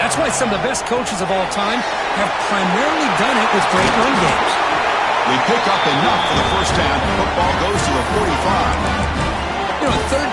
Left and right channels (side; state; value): both; identical; correlation 1.00